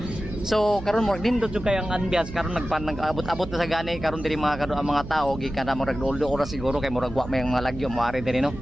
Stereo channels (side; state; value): right; noise; hum, 12 dB below the sound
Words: So karon murag nindot jud kay ang ambiance karon nag-abot-abot na sa gani karon diri mga kado ang mga tao gikan na murag doldo ora siguro kay murag wa may mga lagyo moari diri no.